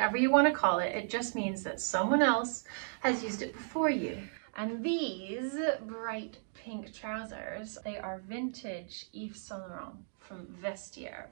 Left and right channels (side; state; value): left; silent; digital silence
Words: you want to call it. It just means that someone else has used it before you. And these bright pink trousers, they are vintage Yves Saint Laurent from Vestiaire.